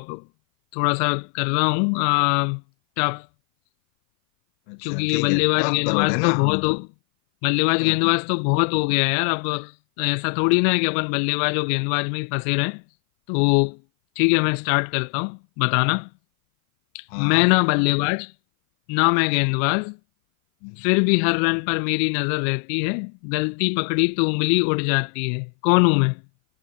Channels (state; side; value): silent; right; 57 dB below the other